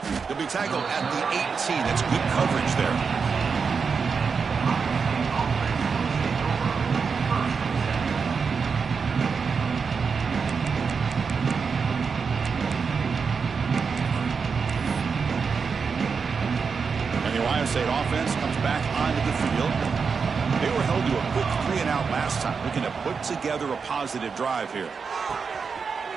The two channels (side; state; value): left; quieter; 5.5 dB